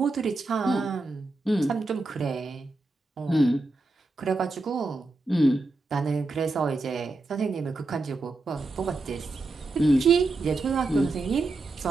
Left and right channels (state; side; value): quieter; left; 3.2 dB